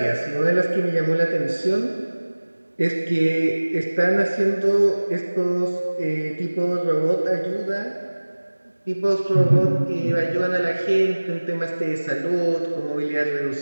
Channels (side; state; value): both; inverted; correlation -1.00